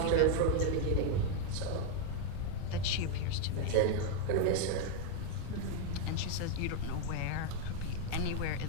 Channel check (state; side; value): different; both; correlation 0.01